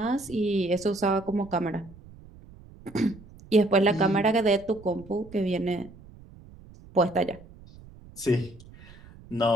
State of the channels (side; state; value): right; noise; rumble, 21 dB below the sound